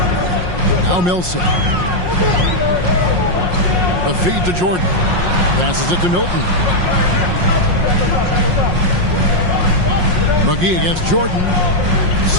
Now Millsap. The feed to Jordan. Passes it to Milton. McGee against Jordan.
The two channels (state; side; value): late; left; 5.6 ms